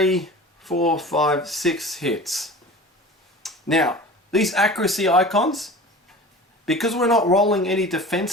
4, 5, 6 hits. Now, these accuracy icons, because we're not rolling any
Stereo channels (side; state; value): both; normal; correlation 0.37